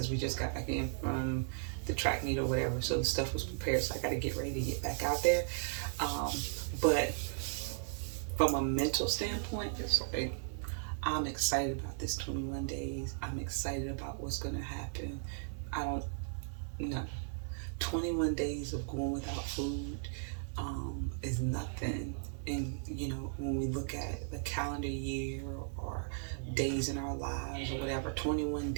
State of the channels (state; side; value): silent; left; 54 dB below the other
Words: we just got back in from the track meet or whatever, so the stuff was prepared. So I got to get ready to get back out there. But from a mental standpoint, it's like I'm excited about this 21 days. I'm excited about what's gonna happen. I don't know. 21 days of going without food is nothing. And when we look at the calendar year or days in our lives or whatever, 21